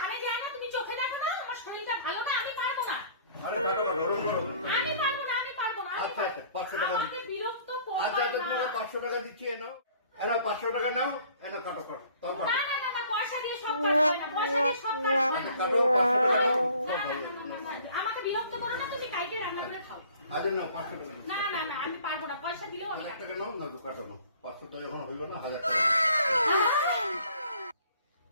যায় না, তুমি চোখে দেখো না, আমার শরীরটা ভালো না, আমি পারবো না। আরে কাটো কাটো, ওরকম করো। আমি পারবো না, আমি পারবো না। আচ্ছা আচ্ছা, 500 টাকা আমাকে বিরক্ত করো। আচ্ছা আচ্ছা, তোমাকে 500 টাকা দিচ্ছি, এনো 500 টাকা নাও, এনো কাটো কাটো, তাও কাটো। না না না, পয়সা দিয়ে সব কাজ হয় না, পয়সা দিয়ে সব কাজ হয় না। কাটো, 500 টাকা নাও, সব ভালো। আমাকে বিরক্ত করো না, তুমি কাইটে রান্না করে খাও। আরে নাও, 500 টাকা না না না, আমি পারবো না, পয়সা দিলেও আমি 1000 টাকা নাও, না তো কাটো নাও। 500 টাকা এখন হইব না, 1000 টাকা।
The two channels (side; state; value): both; inverted; correlation -0.53